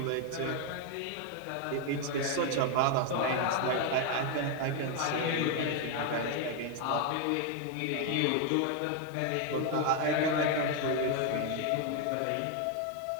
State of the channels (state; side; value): different; both; correlation 0.01